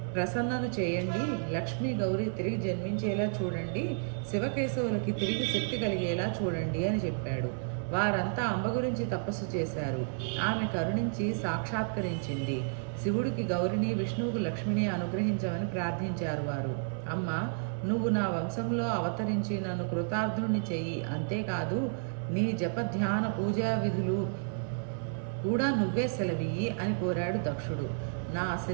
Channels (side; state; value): left; silent; digital silence